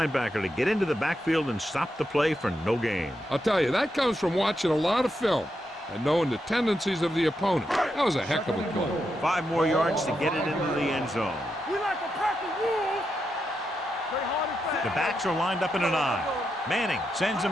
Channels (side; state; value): both; normal; correlation 0.85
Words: to get into the backfield and stop the play for no gain. I'll tell you, that comes from watching a lot of film and knowing the tendencies of the opponent. That was a heck of a play. 5 more yards to get it into the end zone. We like to practice rules. The backs are lined up in an I. Manning sends a